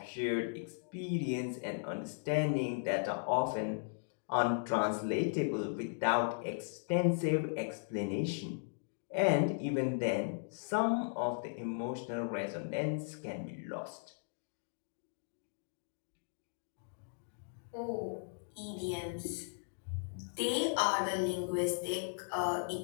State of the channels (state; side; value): silent; right; digital silence